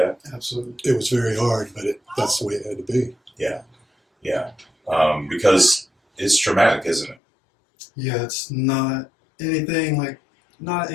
Absolutely. It was very hard, but that's the way it had to be. Yeah. Because it's traumatic, isn't it? Yeah, it's not any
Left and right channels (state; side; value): drops out; right; at 7.2 s